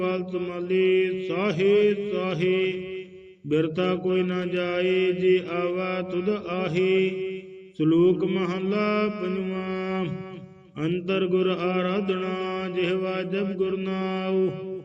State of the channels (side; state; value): both; identical; correlation 1.00